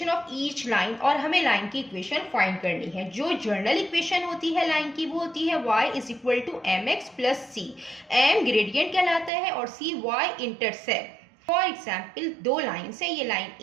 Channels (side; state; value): left; drops out; at 9.3 s